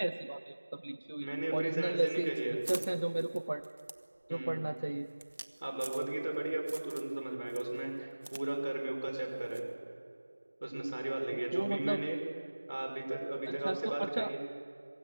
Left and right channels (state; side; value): inverted; both; correlation -1.00